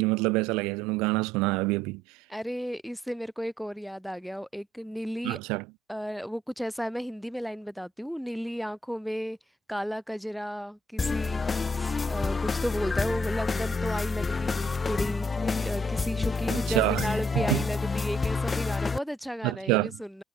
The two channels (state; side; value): normal; both; correlation 0.68